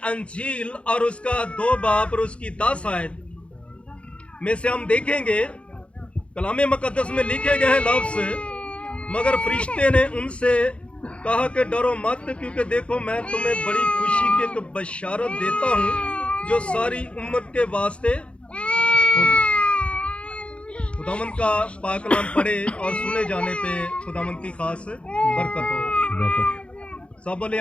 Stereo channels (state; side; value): late; right; 0.060 ms